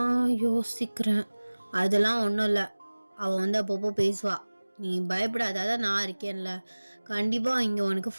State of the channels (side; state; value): both; inverted; correlation -1.00